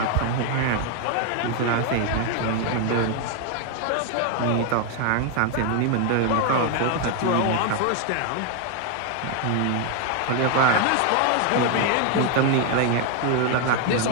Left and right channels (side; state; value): both; different; correlation 0.00